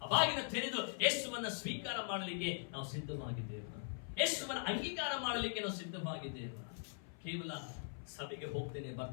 ಆ ಬಾಗಿನ ತೆರೆದು ಯೇಸುವನ್ನ ಸ್ವೀಕಾರ ಮಾಡಲಿಕ್ಕೆ ನಾವು ಸಿದ್ಧವಾಗಿದ್ದೇವೆ. ಯೇಸುವನ್ನ ಅಂಗೀಕಾರ ಮಾಡಲಿಕ್ಕೆ ನಾವು ಸಿದ್ಧವಾಗಿದ್ದೇವೆ. ಕೇವಲ ಸಭೆಗೆ ಹೋಗ್ತೇನೆ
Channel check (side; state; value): right; silent; 50 dB below the other